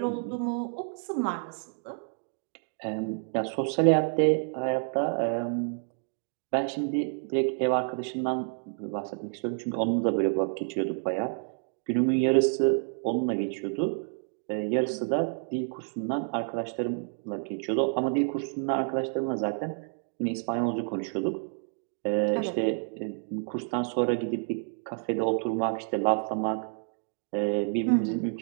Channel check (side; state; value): left; silent; 58 dB below the other